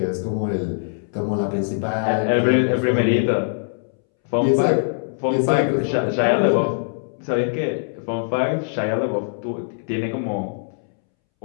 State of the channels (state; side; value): silent; right; 64 dB below the other